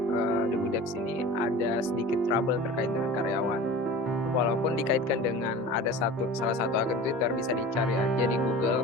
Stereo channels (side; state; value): both; normal; correlation 0.37